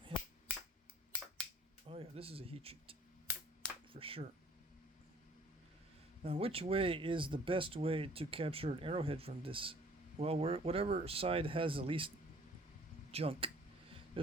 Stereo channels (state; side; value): normal; both; correlation 0.55